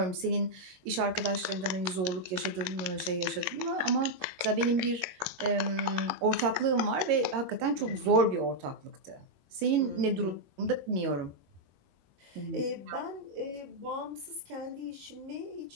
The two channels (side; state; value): left; late; 22 ms